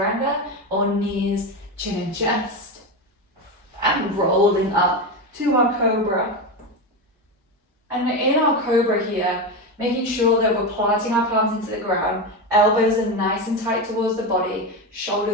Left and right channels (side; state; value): both; normal; correlation 0.16